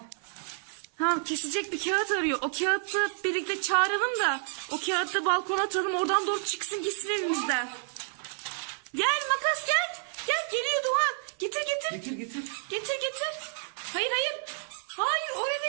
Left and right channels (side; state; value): left; silent; 58 dB below the other